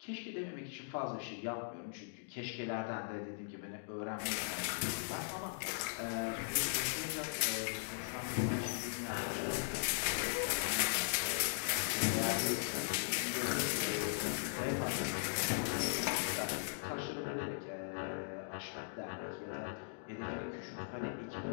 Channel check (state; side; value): silent; right; digital silence